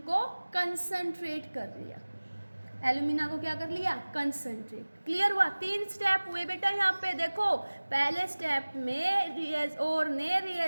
कंसंट्रेट कर लिया, एल्यूमिना को क्या कर लिया, कंसंट्रेट। क्लियर हुआ, 3 स्टेप हुए बेटा यहाँ पे। देखो पहले स्टेप में और ने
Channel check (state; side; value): inverted; both; correlation -1.00